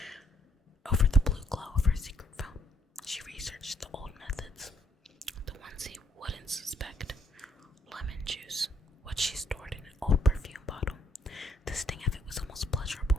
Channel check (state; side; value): normal; both; correlation 0.69